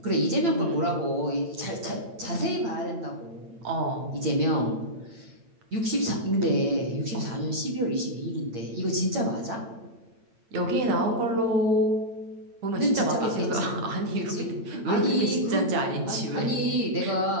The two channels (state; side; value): late; left; 8.9 ms